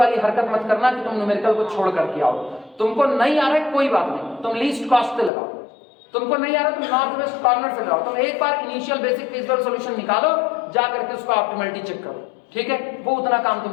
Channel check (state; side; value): drops out; right; at 5.3 s